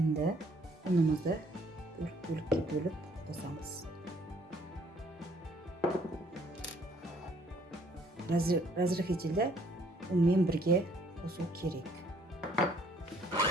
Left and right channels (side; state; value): both; normal; correlation 0.62